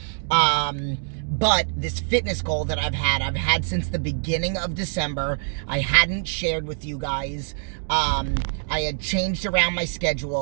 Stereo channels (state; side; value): silent; left; digital silence